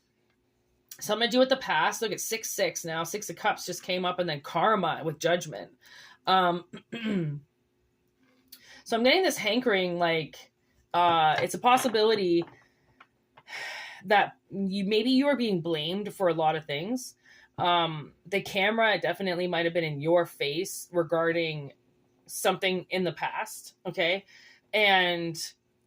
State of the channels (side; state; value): both; identical; correlation 1.00